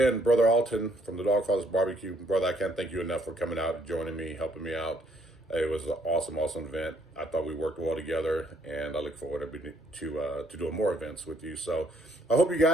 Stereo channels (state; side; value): normal; both; correlation 0.67